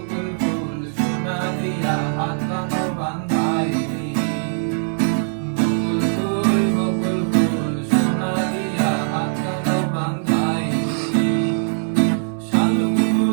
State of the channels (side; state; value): left; silent; 64 dB below the other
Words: ফুল সোনা দিয়া হাত কানো বান্ধাইলি। বকুল ফুল বকুল ফুল সোনা দিয়া হাত কানো বান্ধাইলি। শালুক